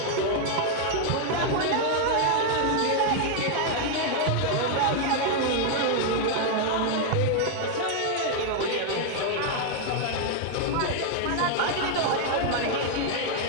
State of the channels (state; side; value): different; both; correlation 0.00